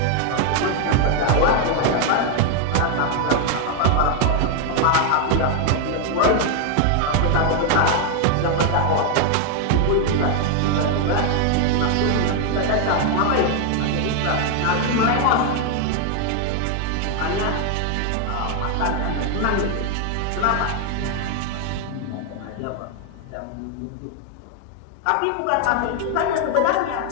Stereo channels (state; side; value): different; both; correlation 0.00